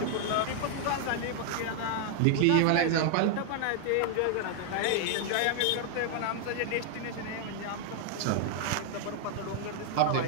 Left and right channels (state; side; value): different; both; correlation 0.00